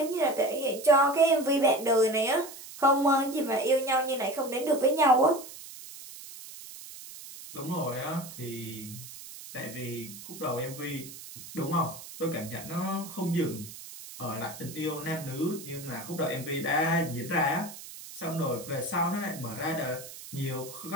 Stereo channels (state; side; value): noise; right; hiss, 14 dB below the sound